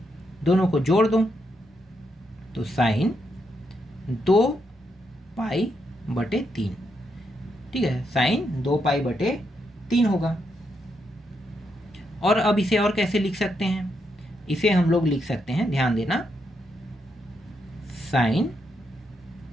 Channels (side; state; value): both; normal; correlation 0.80